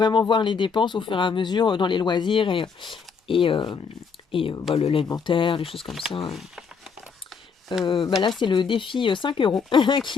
voir les dépenses au fur et à mesure dans les loisirs et, euh, l'alimentaire, les choses comme ça. Là, c'est le défi 5 euros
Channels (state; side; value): quieter; right; 5.7 dB